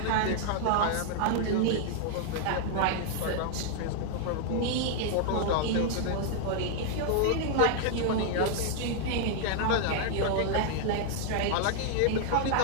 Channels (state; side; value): different; both; correlation -0.01